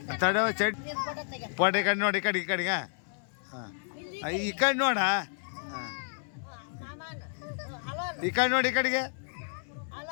ತಡವ ಚಡ್ ಪೋಟ ಈ ಕಡೆ ನೋಡಿ ಈ ಕಡೆಗೆ ಹಾಂ ಈ ಕಡೆ ನೋಡ ಹಾಂ ಈ ಕಡೆ ನೋಡಿ ಈ ಕಡೆಗೆ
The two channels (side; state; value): right; silent; 57 dB below the other